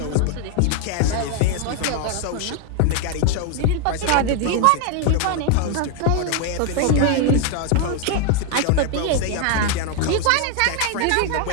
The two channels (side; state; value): both; different; correlation 0.01